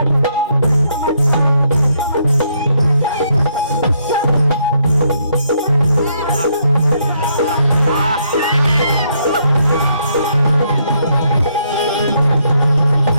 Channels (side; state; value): both; inverted; correlation -0.73